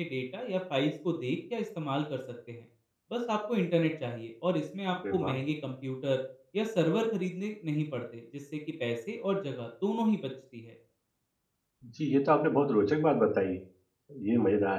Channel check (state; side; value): identical; both; correlation 1.00